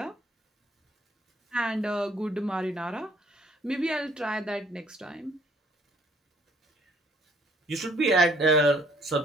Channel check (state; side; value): normal; both; correlation 0.62